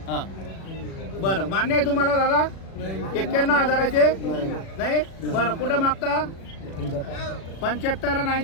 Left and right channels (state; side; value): late; right; 36 ms